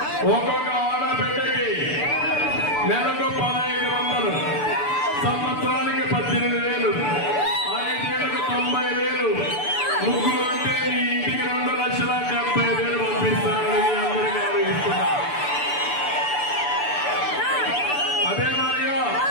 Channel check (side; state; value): right; late; 6.9 ms